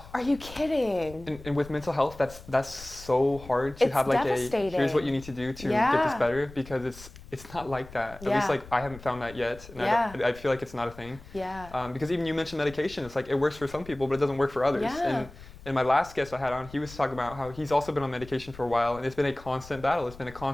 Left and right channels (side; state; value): left; noise; rumble, 18 dB below the sound